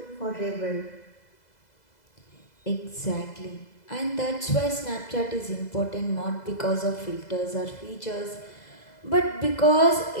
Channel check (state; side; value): late; right; 2.0 ms